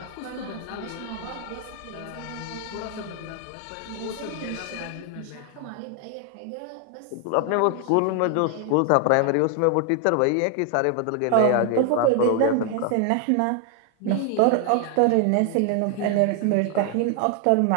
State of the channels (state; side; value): different; both; correlation 0.00